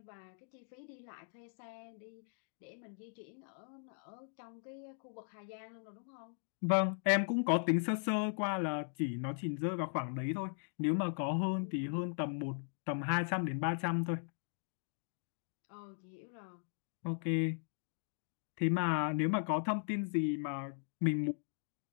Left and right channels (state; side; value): silent; right; digital silence